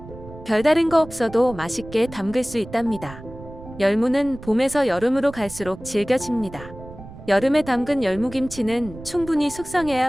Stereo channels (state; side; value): noise; right; rumble, 15 dB below the sound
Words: 별다른 거 없어도 맛있게 담글 수 있답니다. 열무는 봄에서 여름으로 갈수록 질겨집니다. 여름에 담근 열무김치는 충분히